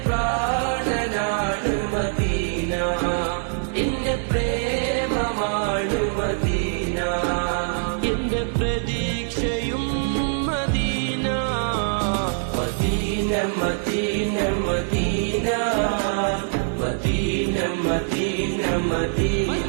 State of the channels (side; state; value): left; silent; 56 dB below the other